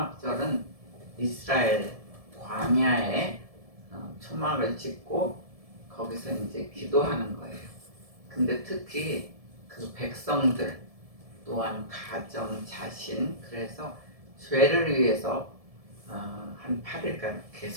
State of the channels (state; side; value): late; left; 1.7 ms